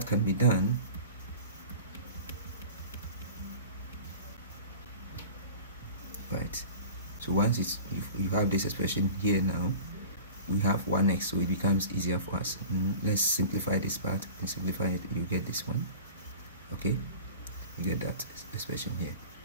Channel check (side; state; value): both; inverted; correlation -0.39